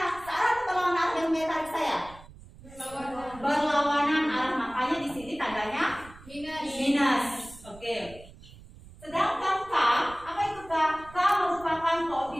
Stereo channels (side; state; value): right; noise; rumble, 20 dB below the sound